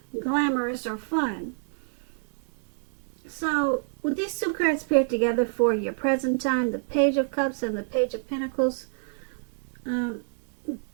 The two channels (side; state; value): left; silent; digital silence